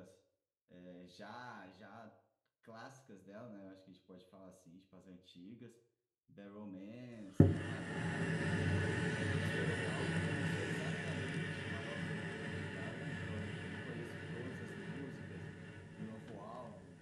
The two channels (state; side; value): identical; both; correlation 1.00